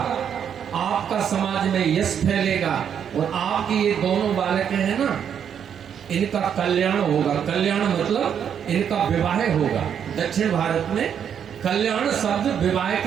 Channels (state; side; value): quieter; left; 8.3 dB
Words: आपका समाज में यश फैलेगा और आपके ये दोनों बालक हैं ना, इनका कल्याण होगा। कल्याण मतलब इनका विवाह होगा। दक्षिण भारत में कल्याण शब्द विवाह